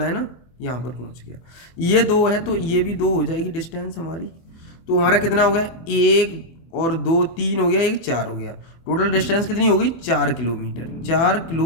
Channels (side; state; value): right; late; 24 ms